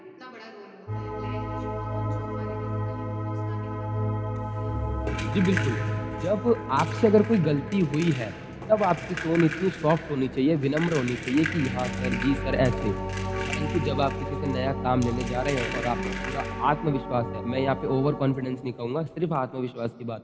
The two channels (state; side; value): identical; both; correlation 1.00